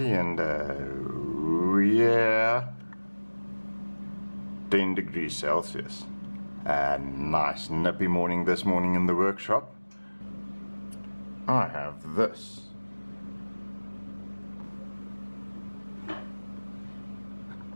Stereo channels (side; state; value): both; inverted; correlation -1.00